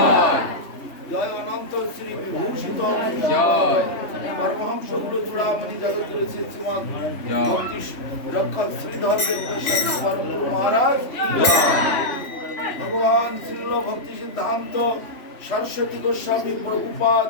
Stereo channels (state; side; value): late; right; 3.2 ms